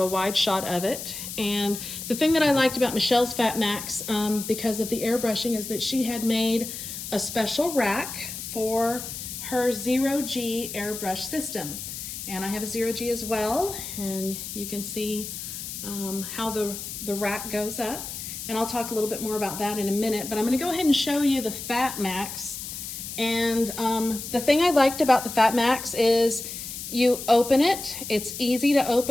a wide shot of it. And the thing that I liked about Michelle's FatMax, because of the airbrushing, is that she had made a special rack for her 0G airbrush system. And I have a 0G as well, and you can see how the rack goes up. And I'll talk a little bit more about that in a minute, but I'm gonna go ahead and show you the FatMax. And the thing I liked about the FatMax is you open it, it's easy to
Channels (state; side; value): noise; left; hiss, 8 dB below the sound